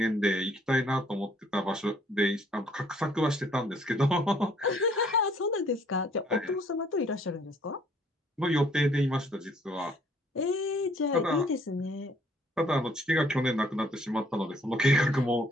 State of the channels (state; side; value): normal; both; correlation 0.63